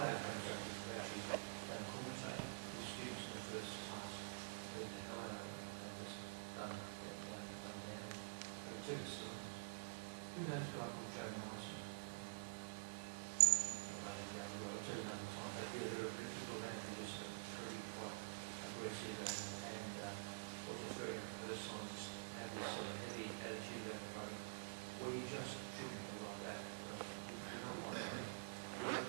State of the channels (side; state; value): left; silent; digital silence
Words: instructors who actually don't commentate with students in the first class. They the hell out of it. They just done down. And it took us to who knows a guy called Joe Morrison? It took another time. They did a bit of people around who was pretty quite aggressive and was very personalised, had this sort of heavy attitude about the program. Well, you just shouldn't be like that. You cannot like that. We have